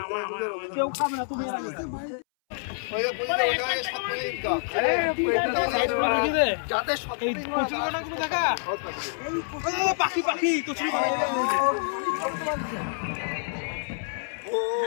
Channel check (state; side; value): silent; right; 60 dB below the other